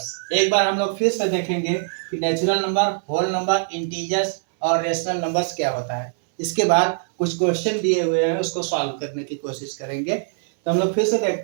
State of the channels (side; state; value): left; silent; 64 dB below the other